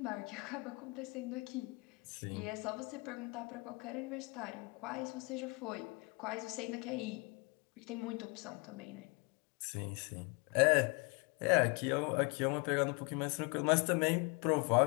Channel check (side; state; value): right; quieter; 30.2 dB